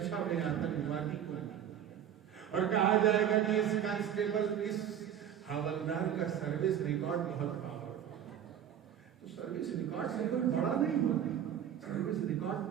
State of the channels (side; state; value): left; quieter; 9.6 dB